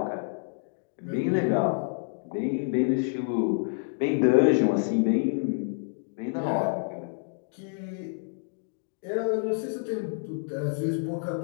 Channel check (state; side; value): silent; right; digital silence